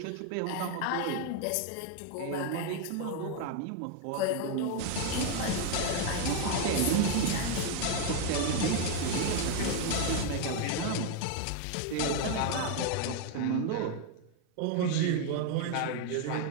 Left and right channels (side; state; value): both; different; correlation 0.01